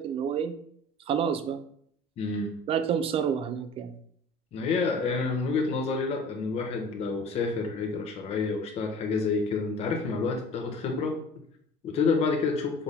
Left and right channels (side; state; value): both; normal; correlation 0.44